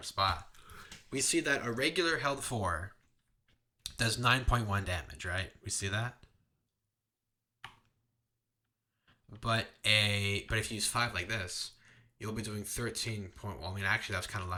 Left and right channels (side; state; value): both; identical; correlation 1.00